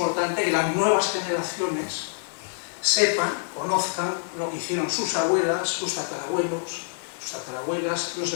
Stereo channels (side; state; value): right; silent; digital silence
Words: que las nuevas generaciones sepan, conozcan lo que hicieron sus abuelas, sus tatarabuelos, sus tatarabuelas, los